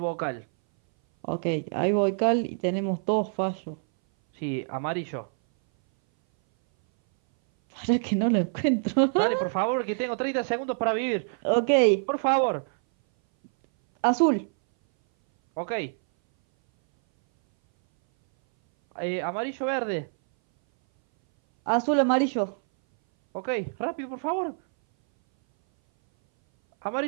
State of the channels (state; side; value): silent; left; 59 dB below the other